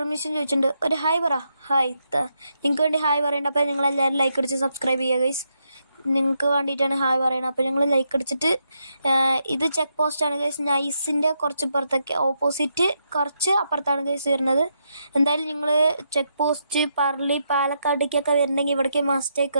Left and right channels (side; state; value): both; inverted; correlation -0.81